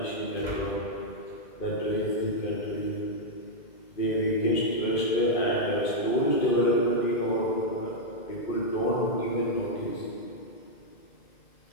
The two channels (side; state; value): right; late; 2.5 ms